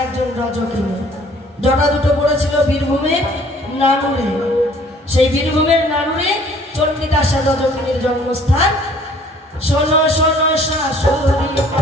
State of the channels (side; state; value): both; normal; correlation 0.56